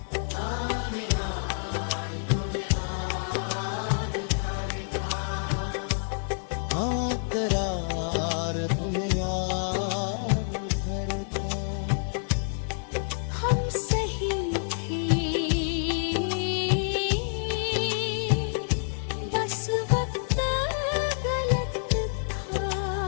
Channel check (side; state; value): right; silent; digital silence